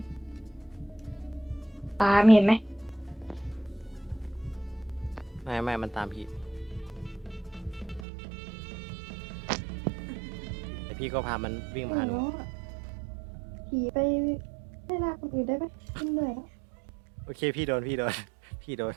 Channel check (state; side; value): drops out; left; at 8.1 s